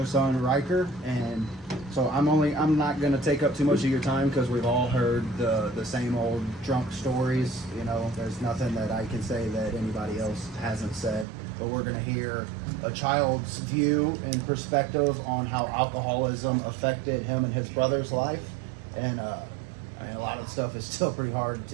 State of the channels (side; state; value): left; drops out; at 11.2 s